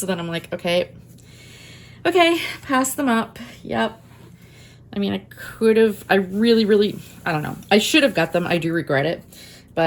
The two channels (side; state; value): both; identical; correlation 1.00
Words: then I'm like, okay, pass them up. Yep. I mean, I really, I don't know. I should have got them. I do regret it.